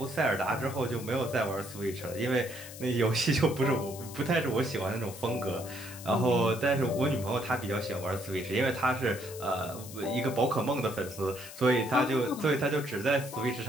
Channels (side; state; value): left; noise; hiss, 14 dB below the sound